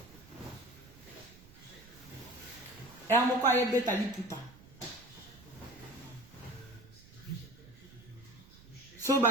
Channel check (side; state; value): right; noise; rumble, 21 dB below the sound